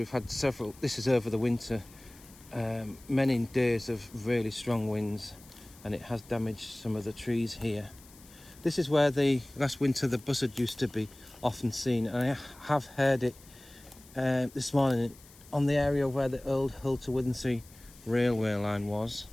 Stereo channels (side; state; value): left; noise; hiss, 23 dB below the sound